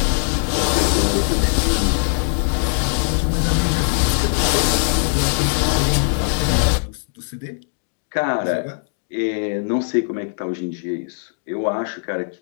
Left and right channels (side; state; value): right; silent; digital silence